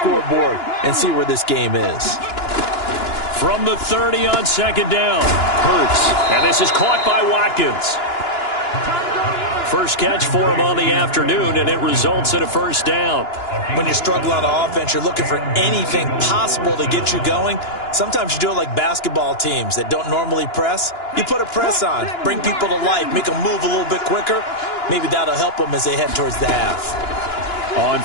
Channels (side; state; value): right; late; 2.9 ms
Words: and see where this game is. From the 30 on second down, Hurts. And this is caught by Watkins. First catch for him on the afternoon, and it results in a first down. When you struggle on offense, you're looking for anything possible to get you going. Sometimes you do it like basketball teams that don't normally press. You put a press on, bring people to life, make them move a little bit quicker. Maybe that'll help them as they head towards the half. On